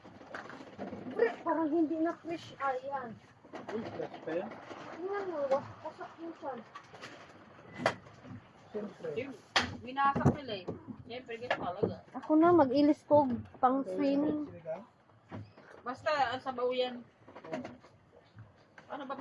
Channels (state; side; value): identical; both; correlation 1.00